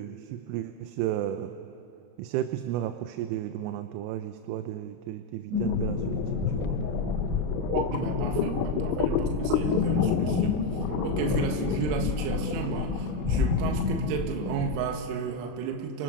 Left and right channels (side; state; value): left; late; 33 ms